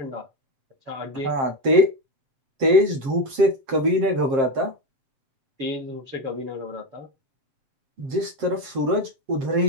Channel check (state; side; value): late; left; 7.5 ms